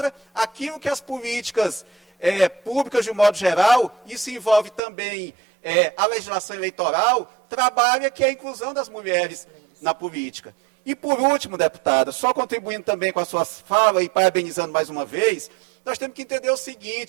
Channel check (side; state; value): left; drops out; at 4.8 s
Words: aquilo que as políticas públicas, de um modo geral, isso envolve também a legislação eleitoral, trabalha, que é a inclusão das mulheres na política. E, por último, deputada, só contribuindo também com a sua fala e parabenizando mais uma vez, nós temos que entender o